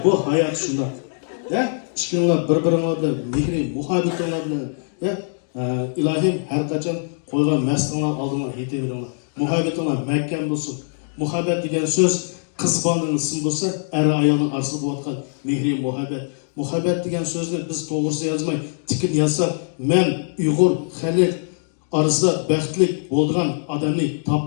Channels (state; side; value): silent; right; 61 dB below the other